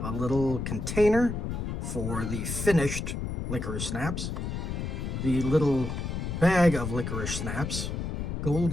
a little container for the finished Licorice Snaps, the little bag of Licorice Snaps,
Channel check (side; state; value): left; noise; rumble, 3 dB below the sound